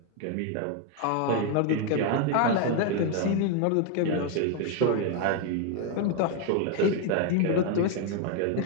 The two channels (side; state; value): both; different; correlation 0.01